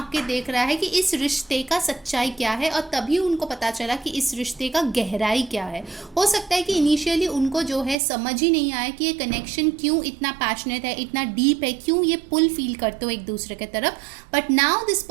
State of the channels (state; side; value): drops out; left; at 8.0 s